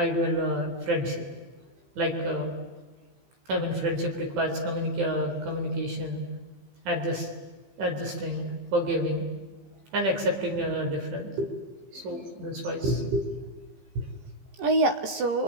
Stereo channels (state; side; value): late; left; 15 ms